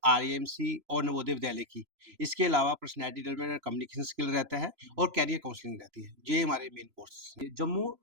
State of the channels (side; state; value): left; late; 3.0 ms